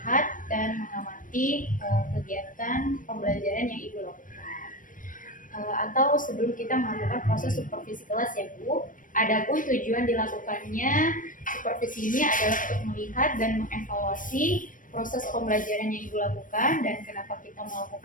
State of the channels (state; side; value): late; right; 0.38 ms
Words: dan mengamati kegiatan pembelajaran yang Ibu lakukan. Atau sebelum kita melakukan proses supervisi kelas ya Bu. Adapun tujuan dilakukannya supervisi ini adalah untuk melihat dan mengevaluasi proses pembelajaran yang Ibu lakukan dan kenapa kita